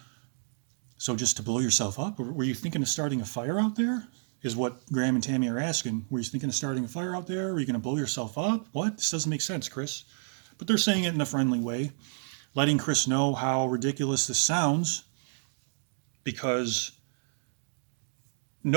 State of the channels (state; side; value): silent; left; digital silence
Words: So just to blow yourself up? Or were you thinking of starting a fire out there? Is what Graham and Tammy are asking. Were you thinking of starting a fire out there? Are you going to blow yourself up? What? This doesn't make sense, Chris. But they're saying it in a friendly way, letting Chris know how ridiculous this sounds, because